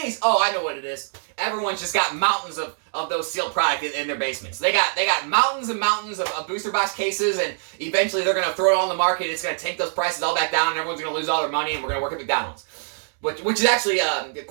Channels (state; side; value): silent; left; digital silence